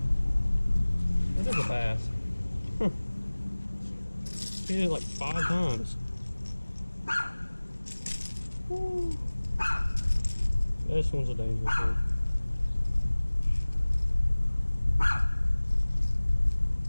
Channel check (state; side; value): inverted; both; correlation -1.00